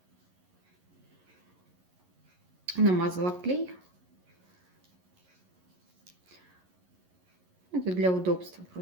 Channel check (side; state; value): left; late; 11 ms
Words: Намазала клей. Это для удобства